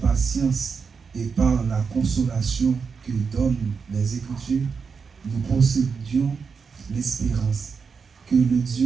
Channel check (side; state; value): left; quieter; 5.6 dB